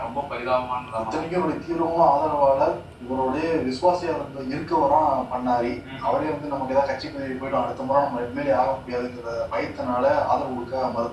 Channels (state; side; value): identical; both; correlation 1.00